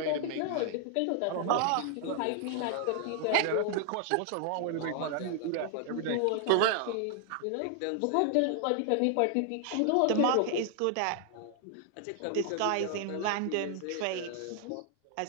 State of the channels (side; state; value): both; different; correlation 0.00